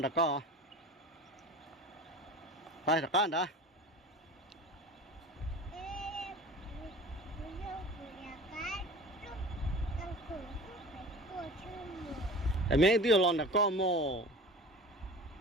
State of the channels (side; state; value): both; normal; correlation 0.38